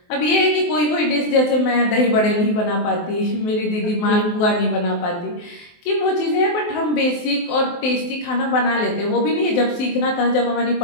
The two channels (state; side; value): late; right; 23 ms